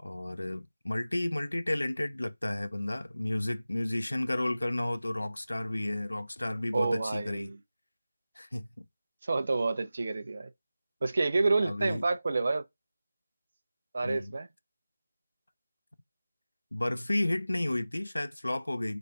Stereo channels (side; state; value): both; inverted; correlation -0.96